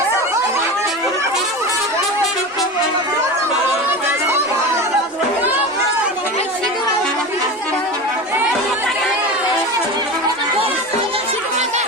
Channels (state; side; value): normal; both; correlation 0.27